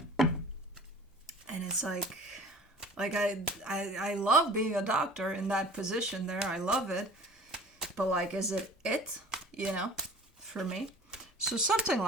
it's like I love being a doctor in that position there. I love it. But like, is it, for me? So something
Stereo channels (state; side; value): normal; both; correlation 0.45